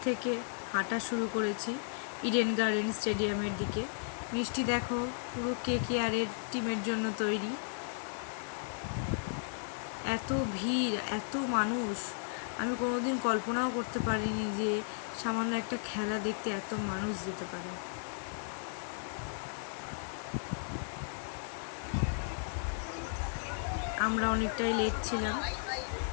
থেকে হাঁটা শুরু করেছি ইডেন গার্ডেন স্টেডিয়ামের দিকে। মিষ্টি দেখো পুরো কেকেআরের টিমের জন্য তৈরি। এত ভিড়, এত মানুষ, আমি কোনোদিন কল্পনাও করতে পারিনি যে সামান্য একটা খেলা দেখতে এত মানুষ যেতে পারে। আমরা অনেকটাই লেট ছিলাম,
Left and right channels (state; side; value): silent; right; digital silence